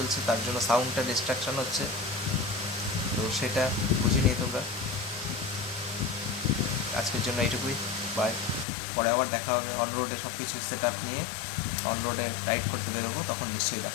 তার জন্য সাউন্ডটা ডিস্ট্রাকশন হচ্ছে, তো সেটা বুঝে নিয়ে তোমরা। আজকের জন্য এইটুকুই, বাই। পরে আবার দেখা হবে অন রোডে, সব কিছু সেট আপ নিয়ে অন রোডে রাইড করতে বেরোবো, তখন নিশ্চয়ই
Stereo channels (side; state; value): right; drops out; at 8.7 s